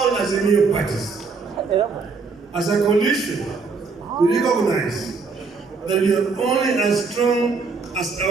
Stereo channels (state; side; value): quieter; left; 4.6 dB